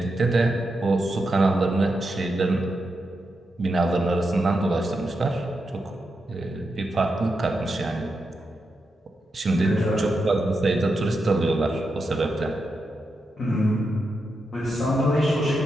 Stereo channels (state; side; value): normal; both; correlation 0.86